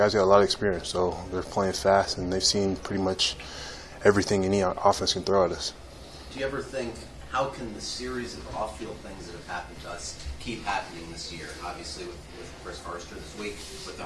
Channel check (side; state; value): both; identical; correlation 1.00